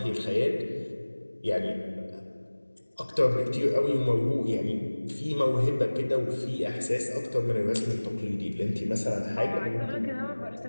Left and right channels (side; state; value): both; inverted; correlation -1.00